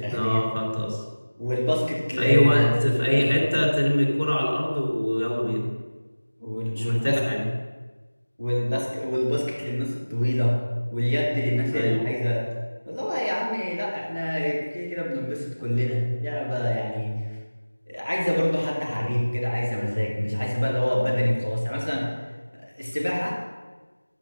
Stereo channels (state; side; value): inverted; both; correlation -1.00